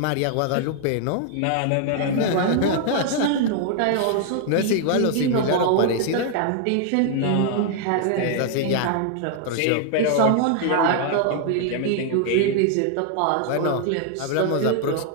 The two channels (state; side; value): different; both; correlation 0.00